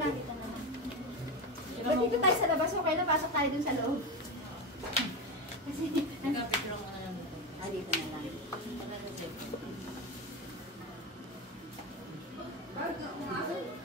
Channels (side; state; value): both; normal; correlation 0.18